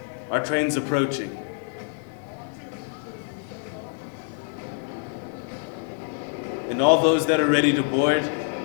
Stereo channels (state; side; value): silent; right; 59 dB below the other